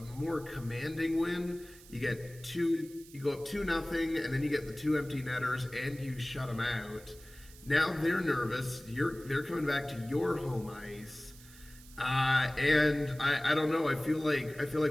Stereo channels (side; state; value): right; noise; hiss, 21 dB below the sound